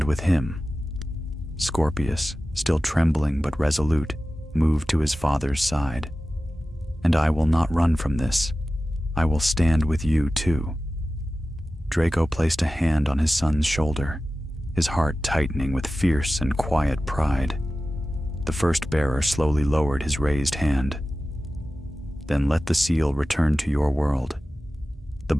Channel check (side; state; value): both; normal; correlation 0.95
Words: with him. Scorpius, still trembling but resolute, moved to his father's side. And I will not run from this. I will stand with you too. Draco placed a hand on his son's shoulder, his heart tightening with fierce and quiet pride. The first bearer slowly lowered his raised hand. Then let the seal return to your world. The